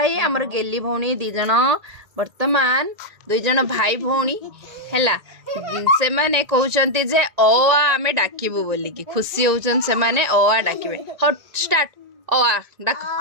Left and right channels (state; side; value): late; left; 1.8 ms